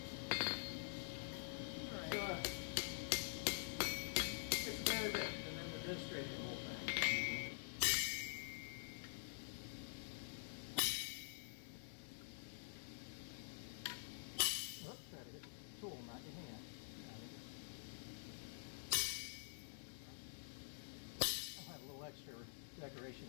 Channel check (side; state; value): right; silent; digital silence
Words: it's about it, and then we're demonstrating the whole thing. Oops, try to hit the tool, not your hand. I'll have a little extra decoration